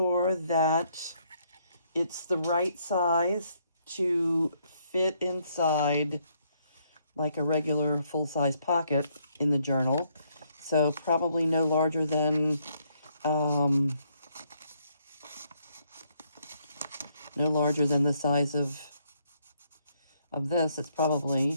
that it's the right size to fit inside like a regular full-size pocket in the journal. So probably no larger than the size of this. It's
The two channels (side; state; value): both; inverted; correlation -0.71